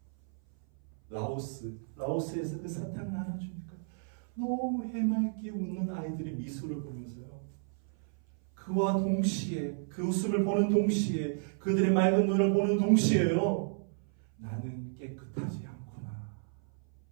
라오스에서 그 사탕을 하나 주니까 너무 해맑게 웃는 아이들의 미소를 보면서요, 그와 동시에, 그 웃음을 보는 동시에, 그들의 맑은 눈을 보는 동시에요, 나는 깨끗하지 않구나.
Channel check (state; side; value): silent; left; 56 dB below the other